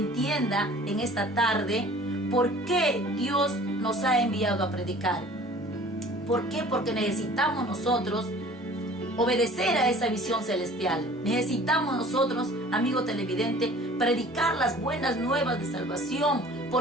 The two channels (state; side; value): normal; both; correlation 0.48